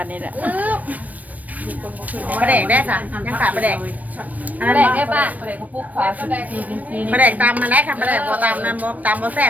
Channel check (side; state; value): left; late; 0.075 ms